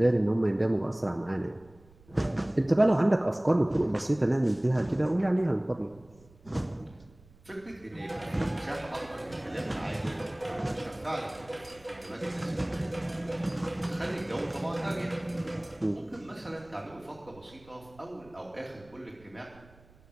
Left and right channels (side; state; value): right; noise; rumble, 25 dB below the sound